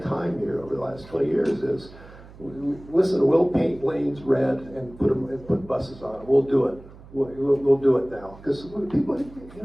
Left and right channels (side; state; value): right; noise; hum, 20 dB below the sound